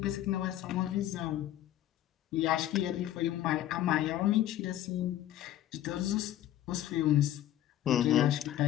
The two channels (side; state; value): right; quieter; 12.7 dB